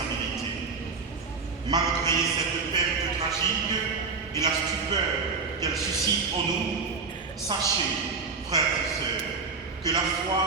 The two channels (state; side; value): quieter; left; 4.6 dB